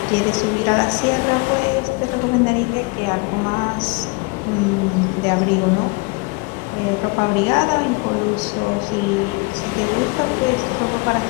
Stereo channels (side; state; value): right; quieter; 29.3 dB